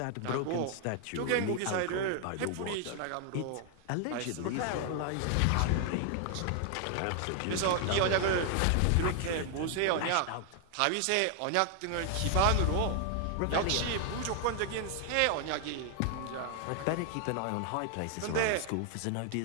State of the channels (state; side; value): different; both; correlation 0.00